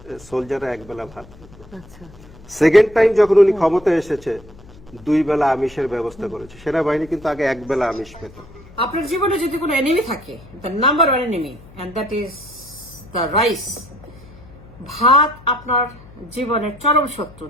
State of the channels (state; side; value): noise; left; hum, 21 dB below the sound